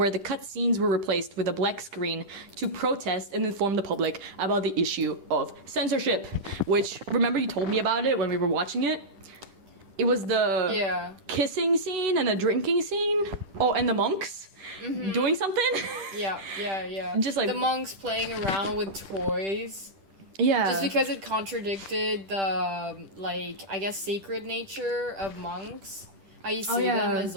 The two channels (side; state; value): left; late; 10 ms